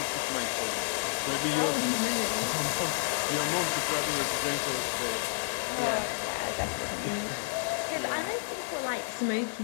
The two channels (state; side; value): silent; right; digital silence